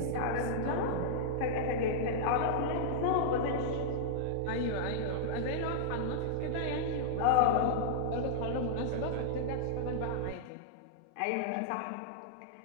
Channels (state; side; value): different; both; correlation -0.02